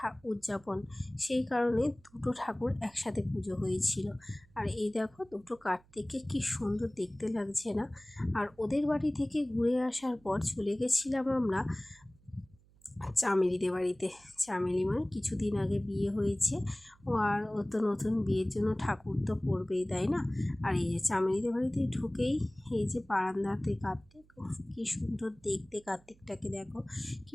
উদযাপন, সেই কারণে 2টো ঠাকুর একসাথে পুজো হয়েছিল। আর এই দেখো, 2টো কার্তিককে কি সুন্দর দেখতে লাগছে না? আর ওদের বাড়ি থেকে ঘুরে আসার পর চলে গেছিলাম আমরা চামেলিদের বাড়িতে। চামেলি মানে কিছুদিন আগে বিয়ে হয়েছে ও, আর ও তো নতুন বিয়ের জন্য ঠাকুর তো পরবেই, তাই না? আর এই যে চামেলিদের বাড়িতে ঢুকেই এই যে বারান্দাতে কার্তিক, কি সুন্দর দেখতে কার্তিকটাকে, দেখো কি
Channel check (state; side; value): noise; right; hum, 29 dB below the sound